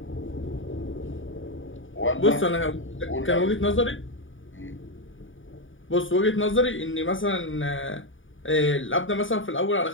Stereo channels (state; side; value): late; right; 0.57 ms